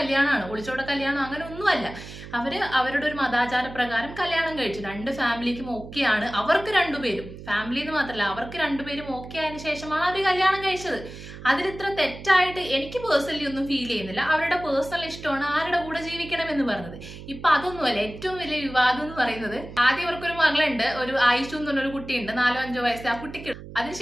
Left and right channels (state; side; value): noise; right; hum, 14 dB below the sound